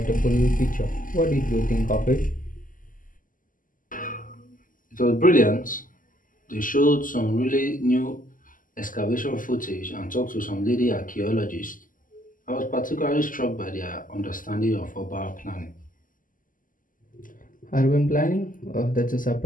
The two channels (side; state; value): right; late; 0.39 ms